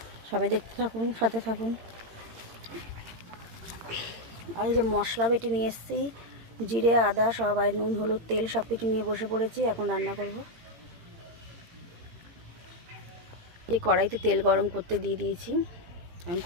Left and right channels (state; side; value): late; left; 18 ms